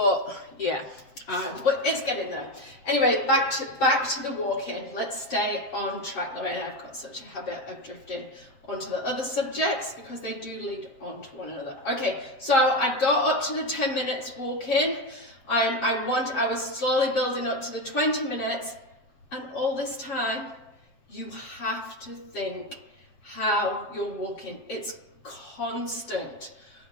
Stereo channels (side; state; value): right; late; 7.5 ms